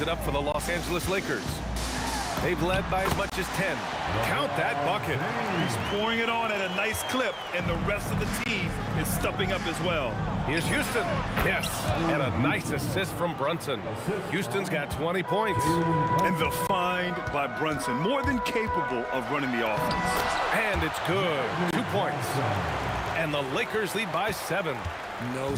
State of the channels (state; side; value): identical; both; correlation 1.00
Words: up for the Los Angeles Lakers. They've led by as much as 10. Count that bucket. He's pouring it on at a nice clip, and the rest of the team is stepping up as well. Here's Houston. Yes, and a nice assist from Brunson. Houston's got 20 points. And the find by Brunson, more than capable of running the offense. And it's good. 2 points. And the Lakers lead by 7. No